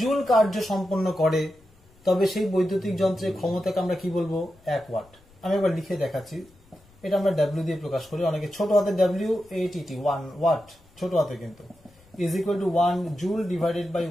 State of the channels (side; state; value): left; noise; rumble, 29 dB below the sound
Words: জুল কার্য সম্পন্ন করে, তবে সেই বৈদ্যুতিক যন্ত্রের ক্ষমতাকে আমরা কি বলবো, 1 ওয়াট। আমি একবার লিখে দেখাচ্ছি, এটা আমরা ডাব্লিউ দিয়ে প্রকাশ করি, অনেকে ছোট হাতে ডাব্লিউ এটিটি 1 ওয়াট ছোট হাতে কিন্তু is equal to 1 joule divided by